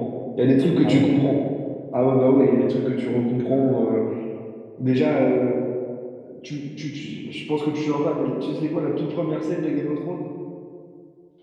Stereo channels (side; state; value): both; identical; correlation 1.00